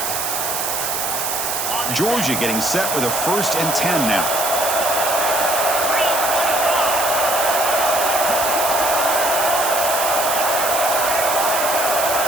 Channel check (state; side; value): noise; right; hiss, 2 dB below the sound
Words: Georgia getting set with a 1st and 10 now.